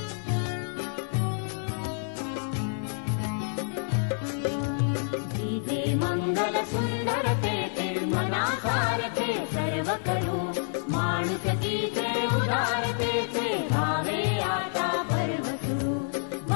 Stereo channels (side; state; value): right; silent; 59 dB below the other